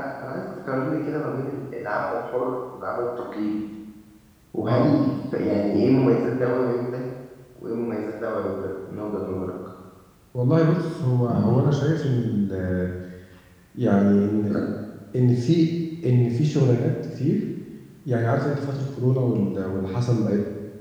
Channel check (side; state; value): both; identical; correlation 1.00